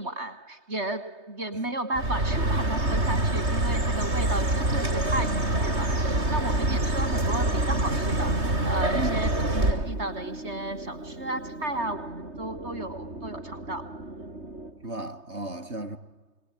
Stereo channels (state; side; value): late; left; 3.2 ms